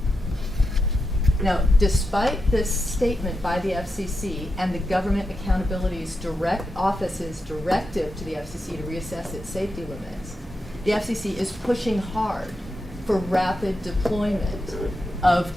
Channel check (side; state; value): both; normal; correlation 0.87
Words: Now, despite this statement by the FCC and the Government Accountability Office's directive to the FCC to reassess its safety limits, the FCC is pushing hard for rapid deployment of